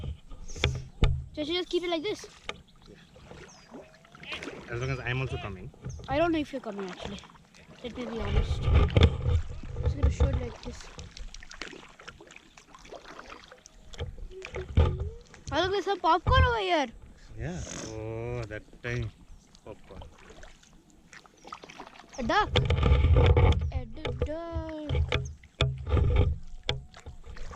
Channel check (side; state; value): both; identical; correlation 1.00